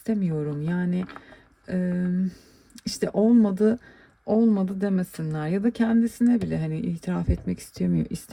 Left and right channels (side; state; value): both; identical; correlation 1.00